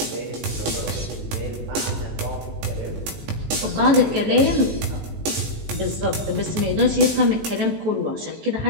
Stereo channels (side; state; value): left; late; 18 ms